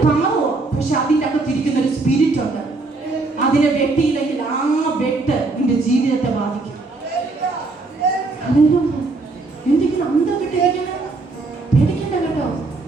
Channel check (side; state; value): left; quieter; 3.5 dB